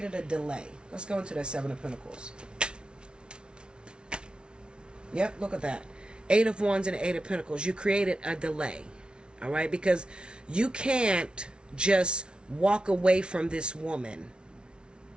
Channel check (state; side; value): late; left; 0.056 ms